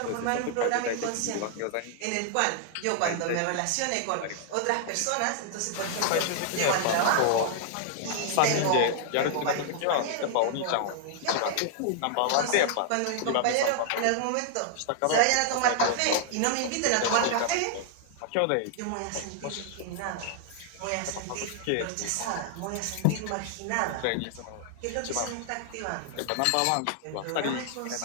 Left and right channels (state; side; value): different; both; correlation -0.01